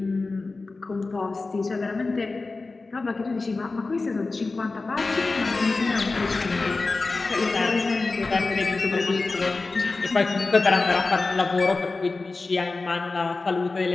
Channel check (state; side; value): quieter; right; 3.7 dB